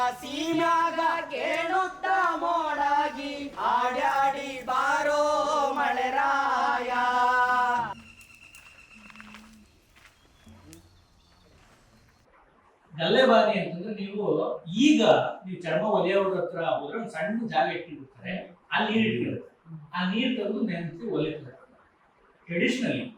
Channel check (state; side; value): identical; both; correlation 1.00